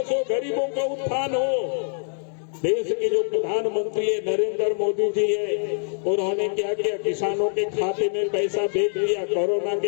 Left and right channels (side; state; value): right; silent; digital silence